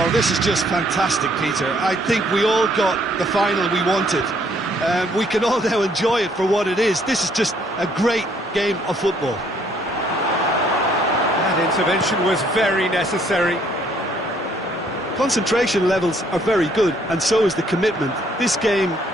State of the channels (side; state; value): both; normal; correlation 0.65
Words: this is just fantastic, Peter. I think we all got the final we wanted. We can all now enjoy it for what it is. This is just a great game of football. That intervention was very necessary. Concentration levels are very good, and so is the commitment. This game